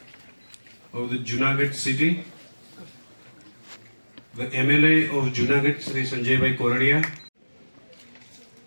of the Junagadh city. The MLA of Junagadh, Sri Sanjay Bhai Koradia.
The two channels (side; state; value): both; inverted; correlation -1.00